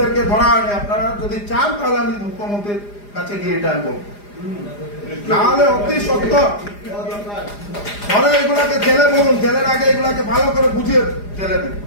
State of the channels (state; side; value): late; right; 4.9 ms